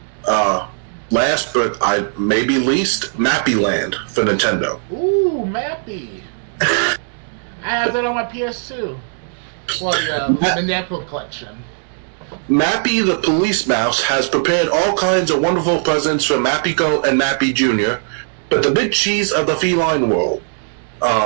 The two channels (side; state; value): left; silent; 67 dB below the other